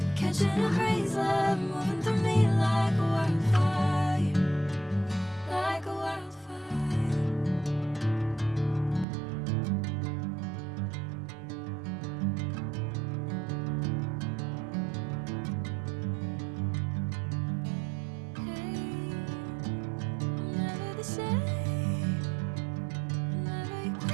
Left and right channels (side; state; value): left; drops out; at 9.1 s